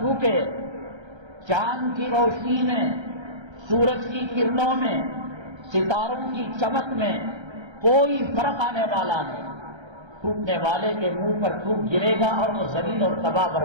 چاند کی روشنی میں، سورج کی کرنوں میں، ستاروں کی چمک میں کوئی فرق آنے والا نہیں۔ تھوکنے والے کے منہ پر تھوک گرے گا اور وہ ذلیل اور تباہ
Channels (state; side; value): late; left; 1.3 ms